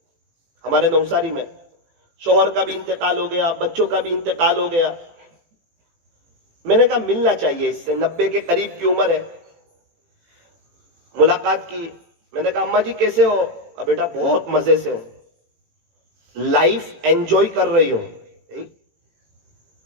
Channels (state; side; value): late; left; 18 ms